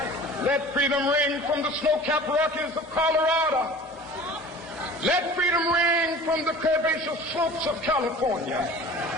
let freedom ring. From the snow-capped Rockies of Colorado, let freedom ring. From the curvaceous slopes of California.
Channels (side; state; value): both; normal; correlation 0.42